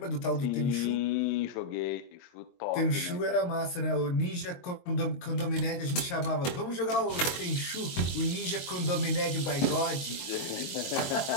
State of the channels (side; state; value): right; late; 22 ms